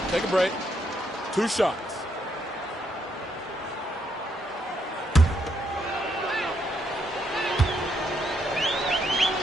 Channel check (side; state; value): both; normal; correlation 0.76